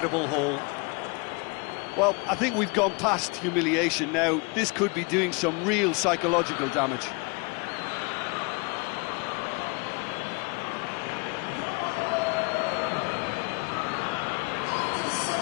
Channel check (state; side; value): quieter; right; 31.0 dB